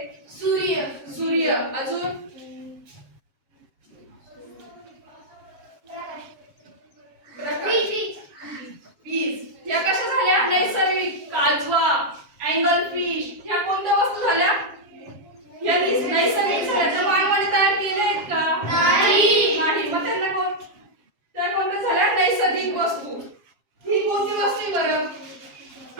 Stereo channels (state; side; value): late; left; 7.4 ms